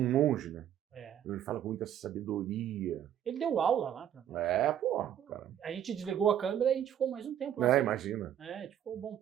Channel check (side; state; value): left; quieter; 10.3 dB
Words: monge, né? Ele fala com muita sabedoria. Ele deu aula lá pra nós. Pô, cara. A gente desligou a câmera e a gente ficou mais um tempo lá. Imagina. A gente ficou um bom